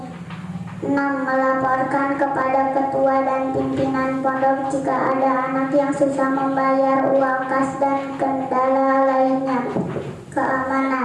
6. Melaporkan kepada ketua dan pimpinan pondok jika ada anak yang susah membayar uang kas dan kendala lainnya.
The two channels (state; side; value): identical; both; correlation 1.00